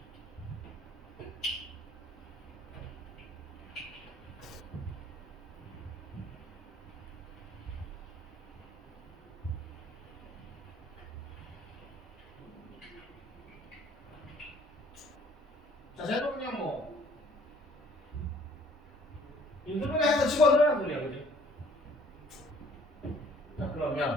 자, 쟤도 그냥 뭐 인수분해 해서 집어넣으라는 소리야, 그지? 자,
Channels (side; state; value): both; normal; correlation 0.57